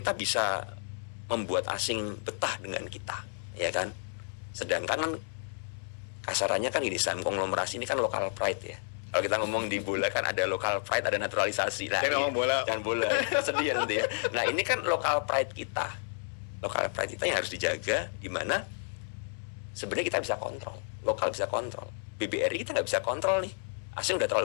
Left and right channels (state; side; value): silent; right; digital silence